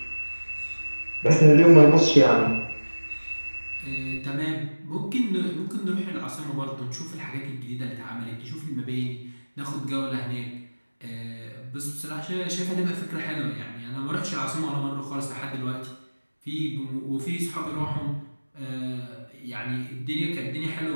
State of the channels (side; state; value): both; inverted; correlation -1.00